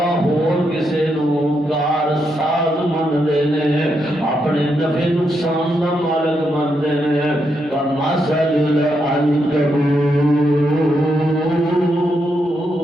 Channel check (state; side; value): normal; both; correlation 0.81